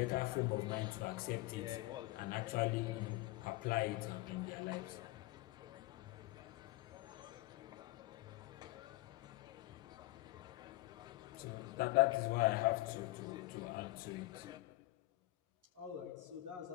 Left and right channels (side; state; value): right; quieter; 19.5 dB